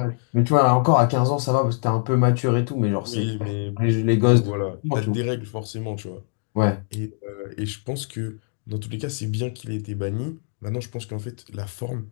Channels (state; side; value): silent; right; digital silence